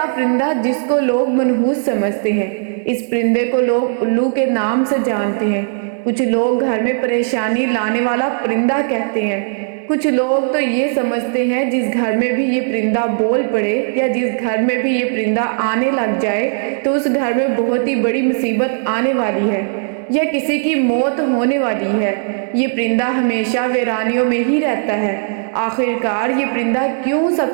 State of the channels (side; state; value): left; silent; 63 dB below the other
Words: پرندہ جس کو لوگ منحوس سمجھتے ہیں۔ اس پرندے کو لوگ الو کے نام سے جانتے ہیں۔ کچھ لوگ گھر میں پریشانی لانے والا پرندہ کہتے ہیں۔ کچھ لوگ تو یہ سمجھتے ہیں جس گھر میں بھی یہ پرندہ بول پڑے یا جس گھر میں بھی یہ پرندہ آنے لگ جائے تو اس گھر میں بہت ہی بڑی مصیبت آنے والی ہے یا کسی کی موت ہونے والی ہے۔ یہ پرندہ ہمیشہ ویرانیوں میں ہی رہتا ہے۔ آخرکار یہ پرندہ کیوں سب